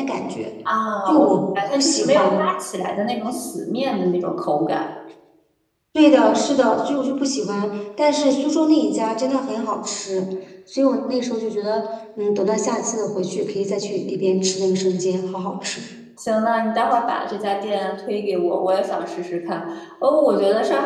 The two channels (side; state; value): both; identical; correlation 1.00